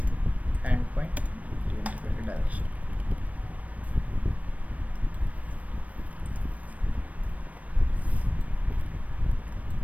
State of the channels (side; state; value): left; late; 0.068 ms